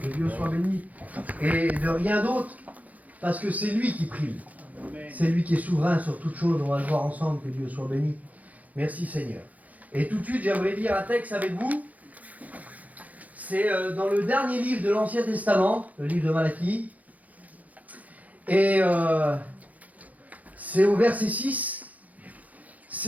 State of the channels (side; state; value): left; late; 0.076 ms